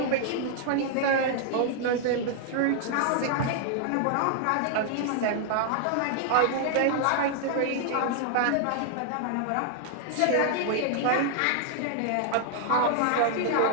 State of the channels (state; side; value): different; both; correlation 0.00